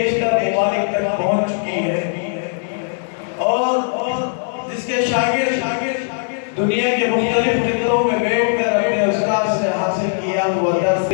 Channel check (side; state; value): right; silent; digital silence